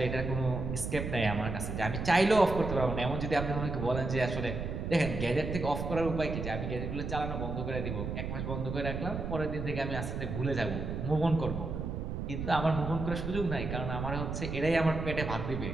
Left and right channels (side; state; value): right; noise; rumble, 4 dB below the sound